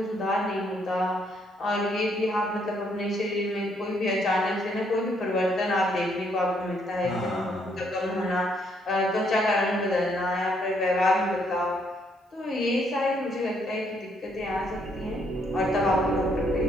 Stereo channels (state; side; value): normal; both; correlation 0.71